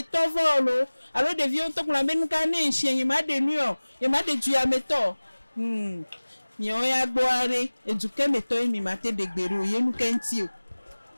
volo alo de vieux to kuna be nka ne nshien ma de nu o ye ma de du ya meto mi o ya gboare eduke meto mi mate de gbero yenu kenti o.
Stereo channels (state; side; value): inverted; both; correlation -1.00